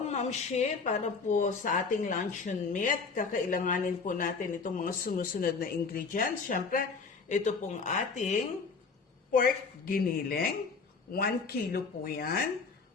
Mamshi, para po sa ating luncheon meat, kakailanganin po natin itong mga sumusunod na ingredients. Siyempre, ito pong ating pork giniling. 1 kilo po yan.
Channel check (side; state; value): right; quieter; 4.8 dB